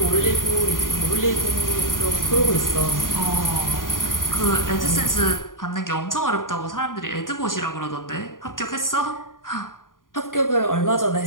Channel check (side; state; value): right; late; 0.90 ms